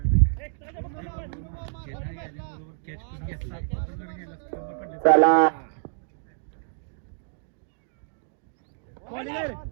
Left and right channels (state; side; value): silent; left; digital silence